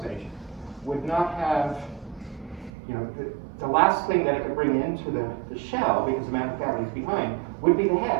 stage, would not have, the last thing that it could bring into the shell, because the mantle cavity is behind, would be the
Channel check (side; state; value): left; drops out; at 2.7 s